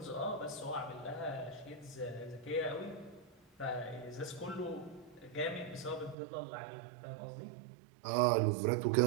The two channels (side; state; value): left; drops out; at 6.2 s